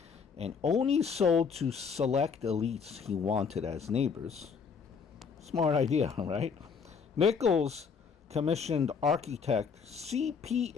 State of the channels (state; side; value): quieter; right; 6.0 dB